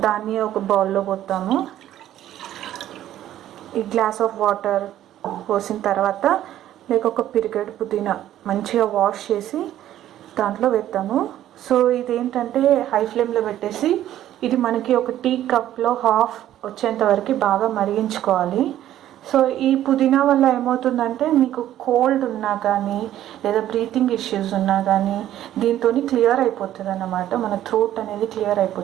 దాన్ని ఒక బౌల్లో పోతాము. ఈ గ్లాస్ ఆఫ్ వాటర్ పోసిన తర్వాత ఒక పిరికెడు పుదీనా మంచిగా వాష్ చేసి దాంట్లో వేస్తాము. సో ఇదేంటంటే హై ఫ్లేమ్లో పెట్టేసి ఇది మనకి ఒక టీ కప్లో హాఫ్ వచ్చేంత వరకు బాగా మరిగించుకోవాలి. సో ఈ పుదీనా వల్ల ఏమవుతుందంటే మీకు కోల్డ్ ఉన్నా కానీ లేదా బ్రీతింగ్ ఇష్యూస్ ఉన్నా కానీ దీంతో క్లియర్ అయిపోతుంది అన్నమాట. మన థ్రోట్ అనేది క్లియర్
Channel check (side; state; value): left; quieter; 12.4 dB